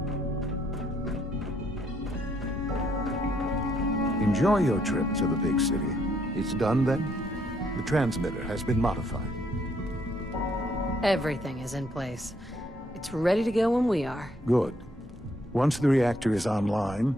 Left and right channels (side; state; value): both; normal; correlation 0.71